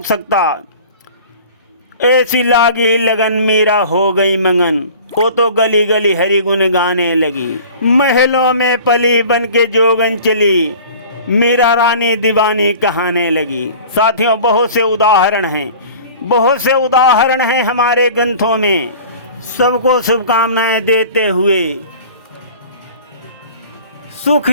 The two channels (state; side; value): inverted; both; correlation -0.43